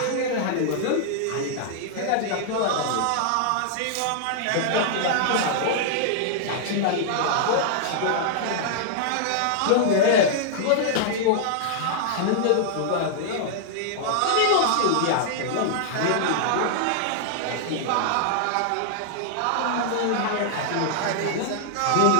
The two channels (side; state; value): both; different; correlation -0.01